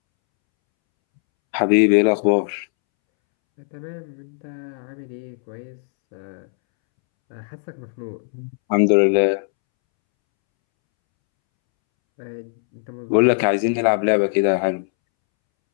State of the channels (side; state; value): right; silent; 65 dB below the other